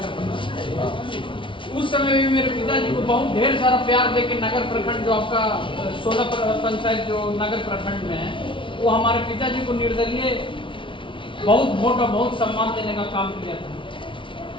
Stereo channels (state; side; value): late; right; 0.25 ms